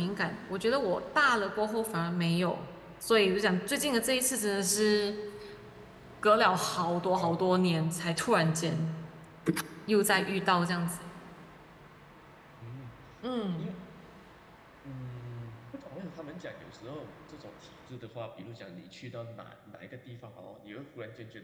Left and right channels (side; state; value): both; identical; correlation 1.00